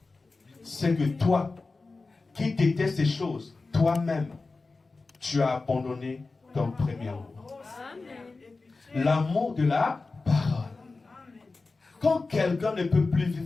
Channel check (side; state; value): right; quieter; 3.7 dB